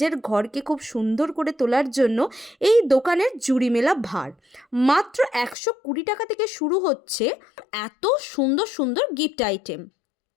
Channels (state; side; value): drops out; right; at 5.6 s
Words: ঘরকে খুব সুন্দর করে তোলার জন্য এই দোকানের জুড়ি মেলা ভার। মাত্র 120 টাকা থেকে শুরু হচ্ছে এত সুন্দর সুন্দর গিফট আইটেম।